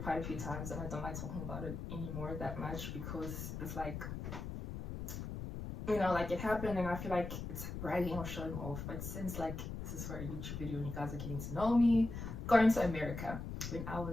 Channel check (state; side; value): noise; left; rumble, 6 dB below the sound